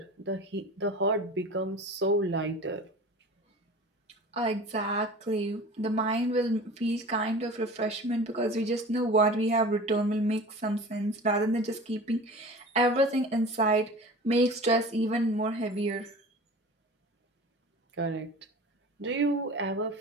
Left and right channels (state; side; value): normal; both; correlation 0.38